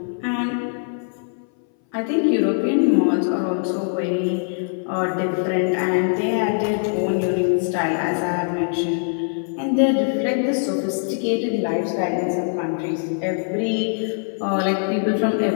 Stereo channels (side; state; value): right; silent; 60 dB below the other